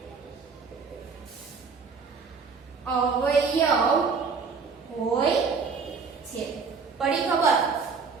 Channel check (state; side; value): quieter; left; 5.2 dB